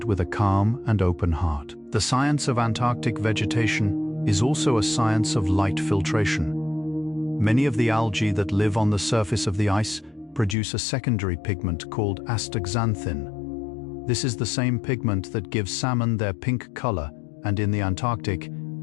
with a calm and open heart. The science of Antarctic vegetation is also a science of light filtration. Many of the algae that live on the surface of the ice produce a secondary pigment called astaxanthin. This is the same pigment that gives salmon their pink color, and in the Antarctic,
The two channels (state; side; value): drops out; right; at 10.6 s